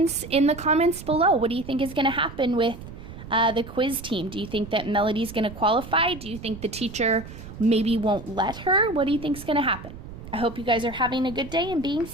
in the comments below. What do you think is going to happen with the quiz team? Do you think that Melody's going to qualify? Do you think the teacher maybe won't let her? What do you think is going to happen? I hope you guys are having a good day and being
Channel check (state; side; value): noise; right; rumble, 13 dB below the sound